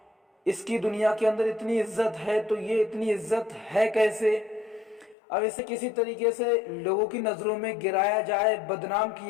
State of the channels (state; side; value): drops out; right; at 5.2 s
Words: اس کی دنیا کے اندر اتنی عزت ہے تو یہ اتنی عزت ہے کیسے؟ اب اسے کسی طریقے سے لوگوں کی نظروں میں گرایا جائے، بدنام